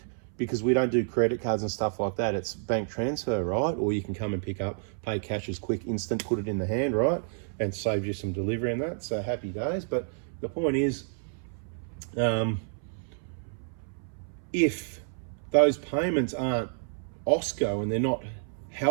because we don't do credit cards and stuff like that, it's bank transfer, right? Or you can come and pick up, pay cash as quick, instant, put it in the hand, right? And save you some delivery and that, so happy days. But the point is, if those payments aren't OSCO and they're not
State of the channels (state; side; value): silent; left; 58 dB below the other